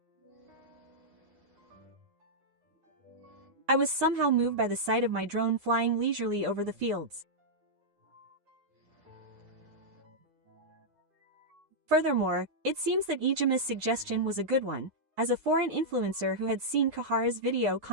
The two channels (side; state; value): left; late; 9.7 ms